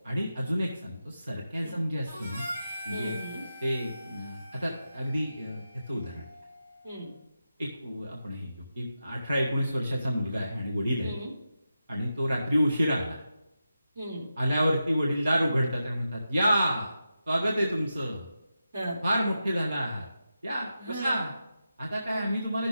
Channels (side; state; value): both; inverted; correlation -0.90